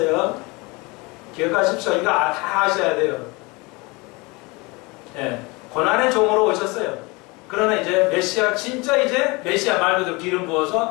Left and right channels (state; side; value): quieter; right; 25.7 dB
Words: 기억하십시오. 이거 다 아셔야 돼요. 네. 고난의 종으로 오셨어요. 그러나 이제 메시아, 진짜 이제 메시아 말 그대로 기름